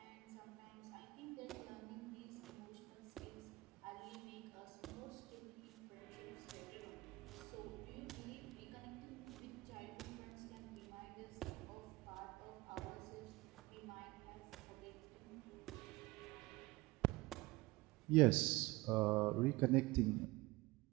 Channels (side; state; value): left; quieter; 21.5 dB